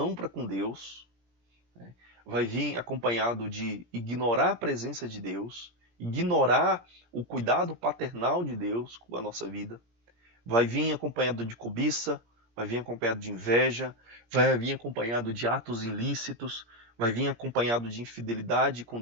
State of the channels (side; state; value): left; late; 17 ms